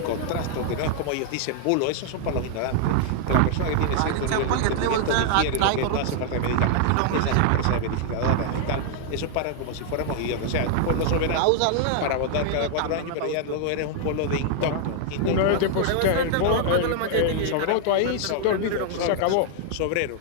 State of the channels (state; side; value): different; both; correlation 0.00